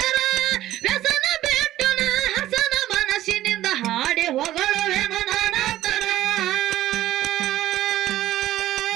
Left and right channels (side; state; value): left; quieter; 14.1 dB